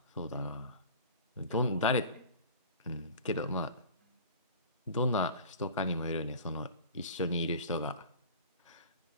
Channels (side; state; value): both; inverted; correlation -0.40